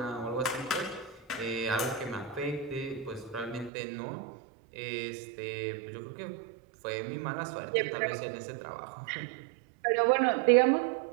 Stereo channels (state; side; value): drops out; left; at 3.7 s